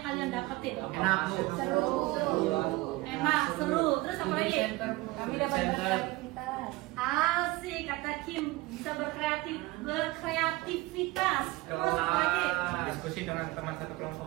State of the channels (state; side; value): quieter; left; 20.5 dB